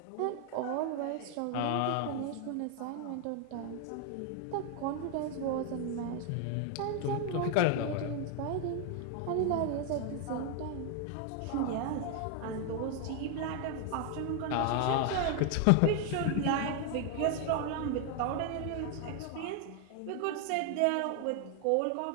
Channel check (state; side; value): different; both; correlation 0.01